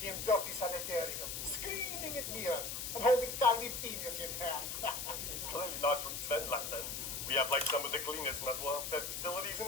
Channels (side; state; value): left; noise; hiss, 4 dB below the sound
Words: he in dirty sanitarium, screaming at mirror and holding tiny penis in hand. He's clearly not from Svenland then. We have like some of the cleanest mental health facilities